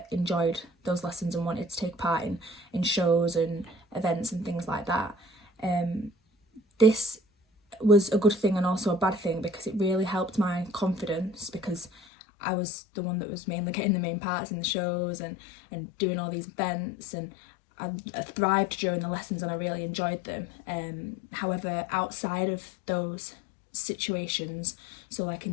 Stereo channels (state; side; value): drops out; right; at 11.9 s